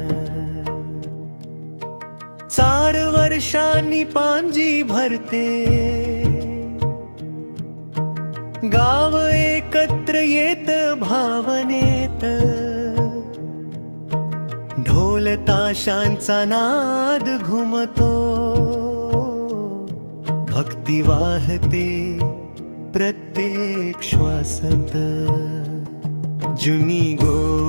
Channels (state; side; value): inverted; both; correlation -1.00